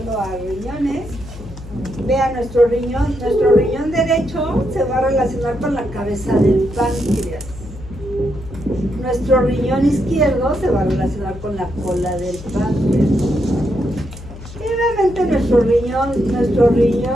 a riñones? Vean, nuestro riñón derecho se va a relacionar con la cabeza del páncreas. Nuestro riñón izquierdo se va a relacionar con la cola del páncreas. Y obviamente nuestro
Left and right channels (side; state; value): left; noise; hum, 14 dB below the sound